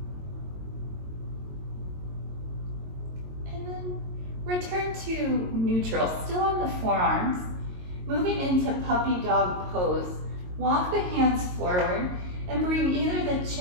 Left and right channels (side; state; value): left; late; 22 ms